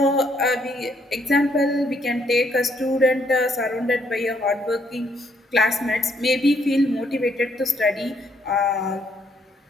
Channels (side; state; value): both; normal; correlation 0.71